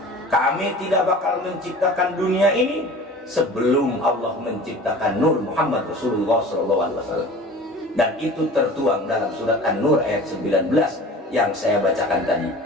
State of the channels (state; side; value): normal; both; correlation 0.41